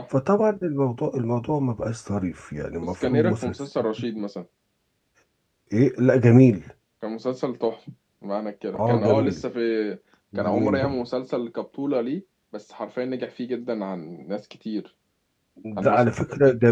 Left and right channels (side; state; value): both; identical; correlation 1.00